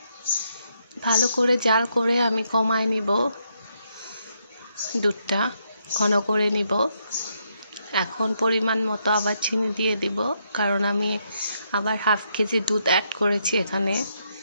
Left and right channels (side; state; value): both; inverted; correlation -0.77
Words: ভালো করে জাল করে আমি কমায় নিব, দুধটা ঘন করে নিব। এখন পরিমাণ মতো আবার চিনি দিয়ে দিব, কারণ আমি আবার হাফ কেজি দুধ অ্যাড করেছি এখানে।